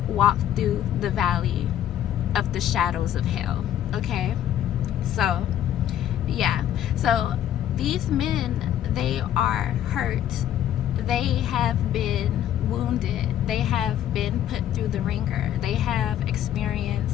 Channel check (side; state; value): right; quieter; 11.0 dB